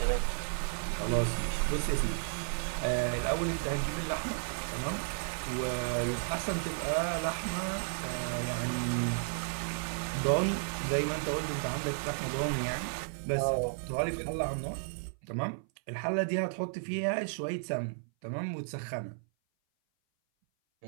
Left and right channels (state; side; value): silent; left; 56 dB below the other